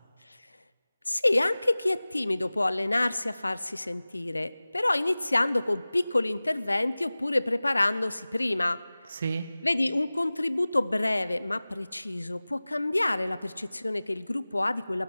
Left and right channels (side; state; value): both; inverted; correlation -0.98